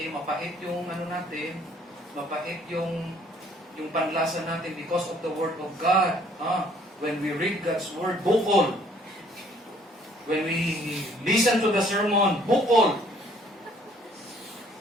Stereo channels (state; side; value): normal; both; correlation 0.60